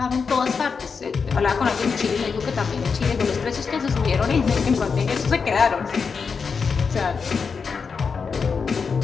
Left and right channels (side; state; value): right; quieter; 5.5 dB